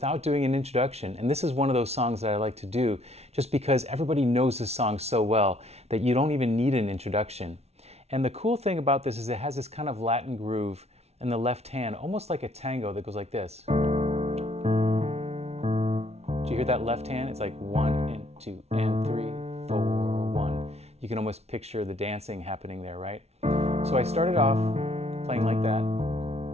doing an introduction, and this is one of those songs that I like to do just because everybody knows this song so well that you don't even need an introduction. And the cool thing about this is it has this kind of Latin groove in the left hand, almost like a tango that goes like this. Do you hear that left hand? It's like 1 and 2 and 3, 4, 1. You can almost picture the dancing happening there, right? So I started off playing like that.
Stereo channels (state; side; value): late; left; 0.31 ms